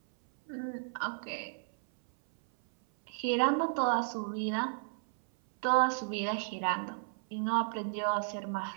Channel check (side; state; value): left; silent; 56 dB below the other